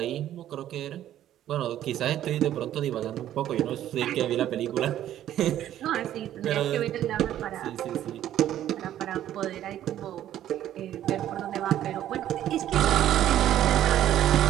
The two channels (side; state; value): left; quieter; 12.0 dB